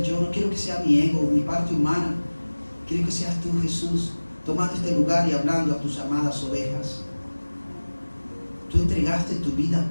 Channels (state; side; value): inverted; both; correlation -1.00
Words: yo, no quiero que sea mi ego, mi parte humana. Quiero que seas tú, Jesús, tomando este lugar y hablando a tus amadas ovejas. Tú entregaste tu